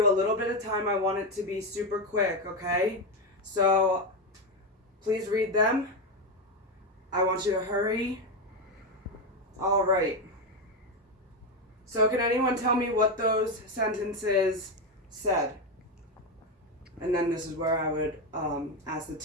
a little bit of time. I want it to be super quick, okay? So please read them. I want you to hurry. All right. So can anyone tell me what those sentences said? And then this is where I would ask the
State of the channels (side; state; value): both; normal; correlation 0.11